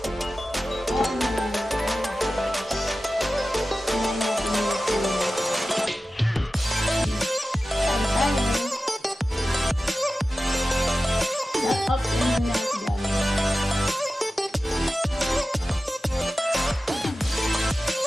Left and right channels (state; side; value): normal; both; correlation 0.94